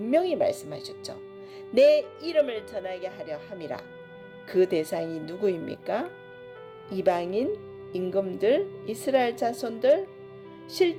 말씀하셨죠. 내 이름을 전하게 하려 함이라. 그 대상이 누구입니까? 이방인, 임금들, 이스라엘 자손들.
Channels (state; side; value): identical; both; correlation 1.00